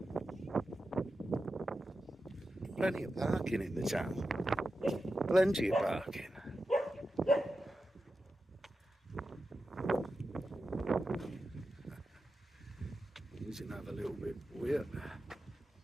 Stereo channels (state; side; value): normal; both; correlation 0.91